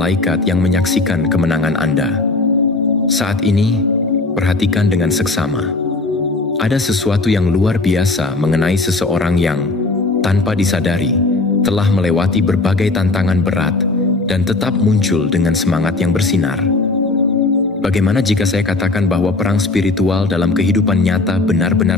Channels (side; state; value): right; quieter; 3.3 dB